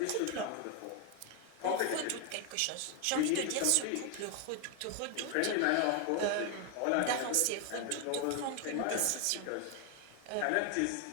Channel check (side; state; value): both; different; correlation 0.01